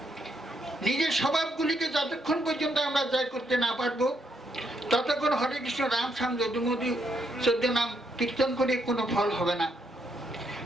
নিজের স্বভাবগুলিকে যতক্ষণ পর্যন্ত আমরা জয় করতে না পারবো, ততক্ষণ হরে কৃষ্ণ রাম শ্যাম যদুমধু 14 নাম কীর্তন করে কোনো ফল হবে না।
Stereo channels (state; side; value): normal; both; correlation 0.76